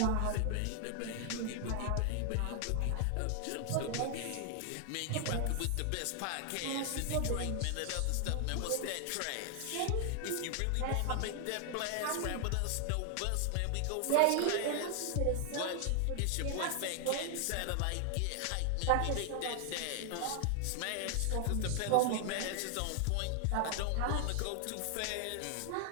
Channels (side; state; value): both; different; correlation 0.00